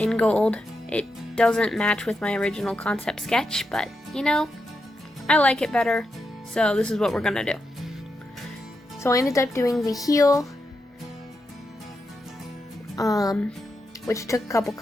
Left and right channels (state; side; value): normal; both; correlation 0.86